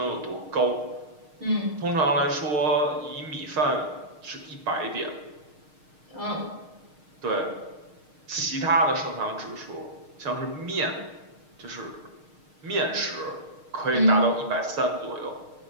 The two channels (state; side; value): late; left; 6.5 ms